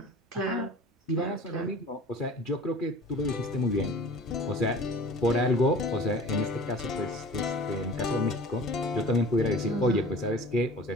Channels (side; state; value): both; normal; correlation 0.42